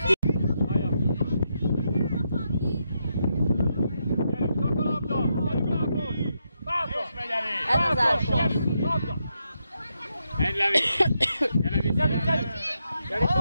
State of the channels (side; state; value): both; inverted; correlation -0.82